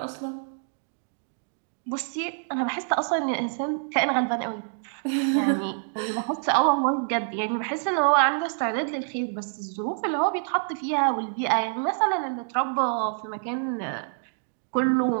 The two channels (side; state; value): left; silent; 60 dB below the other